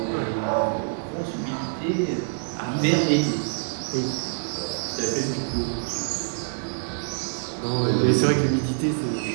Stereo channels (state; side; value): silent; left; 58 dB below the other